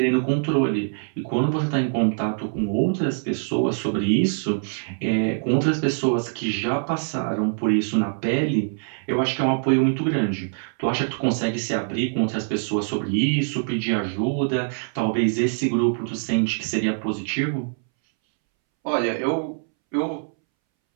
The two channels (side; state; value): left; silent; 63 dB below the other